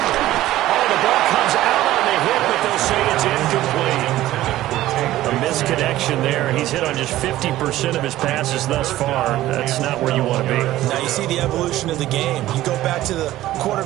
Oh, the ball comes out on the hit, but they'll say it's incomplete. A misconnection there. He's hit on just 50% of his passes thus far. That's not where you want to be. Now you see the evolution of the game. You go back to the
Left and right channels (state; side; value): quieter; left; 15.0 dB